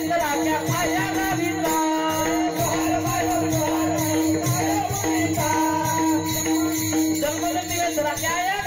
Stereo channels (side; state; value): both; identical; correlation 1.00